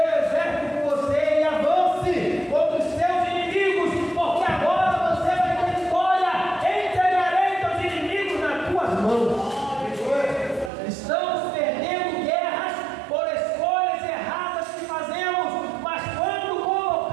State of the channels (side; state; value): left; drops out; at 10.7 s